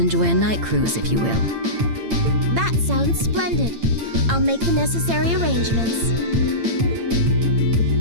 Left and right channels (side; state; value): left; late; 8.8 ms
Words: a night cruise, if you will. That sounds splendid. I'll make the necessary arrangements.